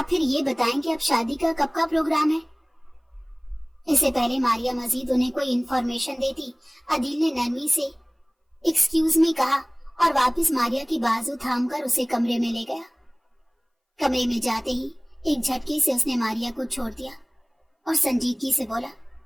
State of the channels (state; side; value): identical; both; correlation 1.00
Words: پھر یہ بتائیں کہ اب شادی کا کب کا پروگرام ہے؟ اس سے پہلے ماریا مزید انہیں کوئی انفارمیشن دیتی، عدیل نے نرمی سے ایکسکیوز می کہا اور واپس ماریا کی بازو تھام کر اسے کمرے میں لے گیا۔ کمرے میں جاتے ہی ایک جھٹکے سے اس نے ماریا کو چھوڑ دیا اور سنجیدگی سے بولا،